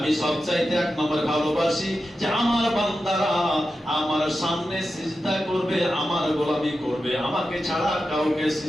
সবচাইতে 1 নম্বরে ভালোবাসি যে আমার বান্দারা আমার সামনে সিজদা করবে, আমার গোলামি করবে, আমাকে ছাড়া কাউকে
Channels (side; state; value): both; normal; correlation 0.91